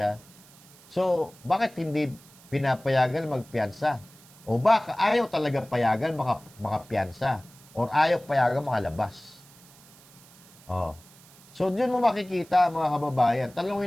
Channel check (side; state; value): right; noise; hiss, 24 dB below the sound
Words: So, bakit hindi pinapayagan magpiansa? O baka ayaw talaga payagan makapiansa? Or ayaw payagan makalabas? So, dyan mo makikita, mga kababayan.